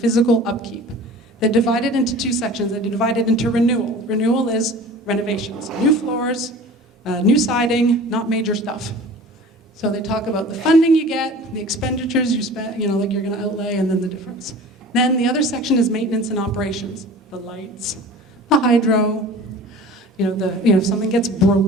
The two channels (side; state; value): both; normal; correlation 0.41